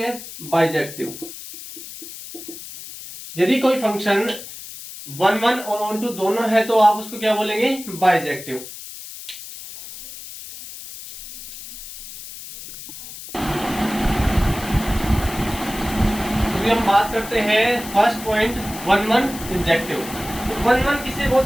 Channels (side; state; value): left; noise; hiss, 13 dB below the sound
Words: बाइजेक्टिव। यदि कोई फंक्शन 1 और ऑन टू दोनों है तो आप उसको क्या बोलेंगे, बाइजेक्टिव। तो हम बात करते हैं फर्स्ट पॉइंट 1 इंजेक्टिव। तो 1 किसे